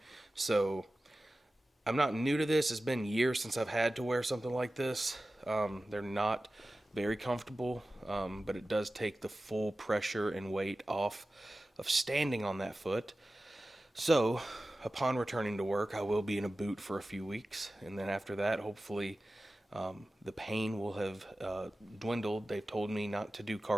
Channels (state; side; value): normal; both; correlation 0.95